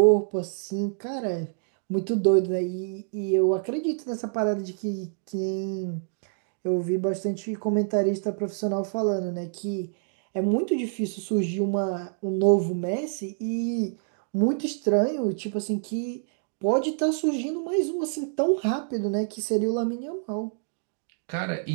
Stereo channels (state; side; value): silent; left; digital silence